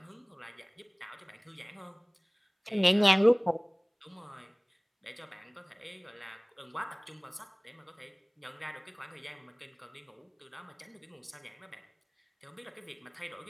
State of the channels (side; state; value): both; identical; correlation 1.00